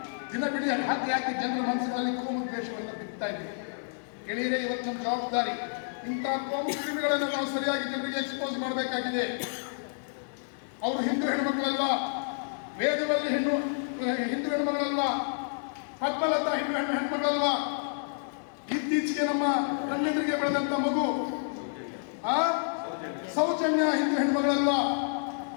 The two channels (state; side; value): silent; right; digital silence